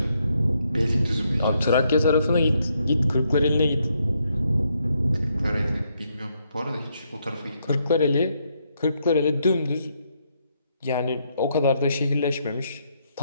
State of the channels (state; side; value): inverted; both; correlation -0.76